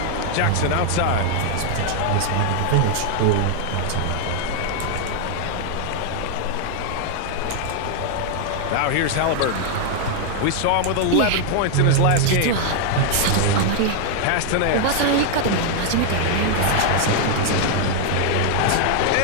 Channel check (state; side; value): different; both; correlation 0.00